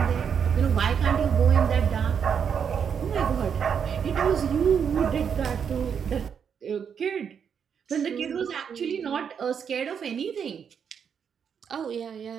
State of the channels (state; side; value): quieter; left; 7.3 dB